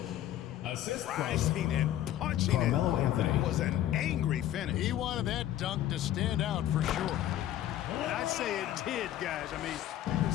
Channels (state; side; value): quieter; right; 12.5 dB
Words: Assist from rising and punching Carmelo it. Anthony. Was an angry finish. He wanted that dunk to stand out for sure. And I'd say it did, guys. I mean, you can